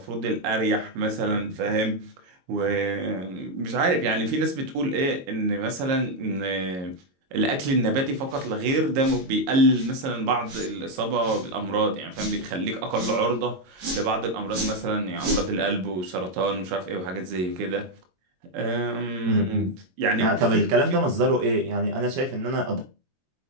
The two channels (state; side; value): late; left; 22 ms